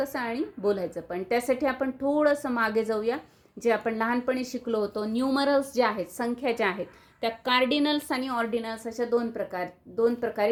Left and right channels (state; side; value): identical; both; correlation 1.00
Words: आणि बोलायचं पण. त्यासाठी आपण थोडंसं मागे जाऊया. जे आपण लहानपणी शिकलो होतो, न्यूमरल्स जे आहेत, संख्या ज्या आहेत, त्या कार्डिनल्स आणि ऑर्डिनल्स अशा दोन